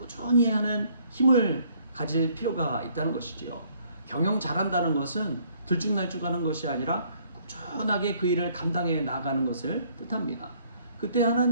하는 힘을 가질 필요가 있다는 것이지요. 경영 잘한다는 것은 들쭉날쭉하는 것이 아니라 꾸준하게 그 일을 감당해 나가는 것을 뜻합니다. 그때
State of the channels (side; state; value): both; inverted; correlation -0.63